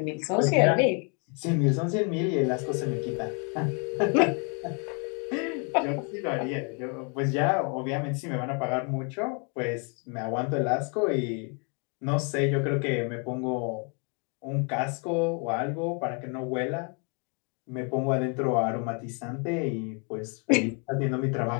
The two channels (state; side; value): quieter; right; 36.8 dB